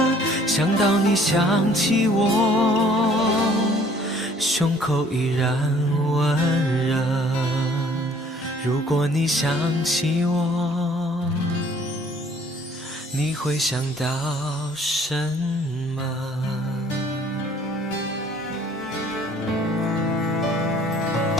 想到你想起我，胸口依然温热。如果你想起我，你会想到什么？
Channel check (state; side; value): normal; both; correlation 0.57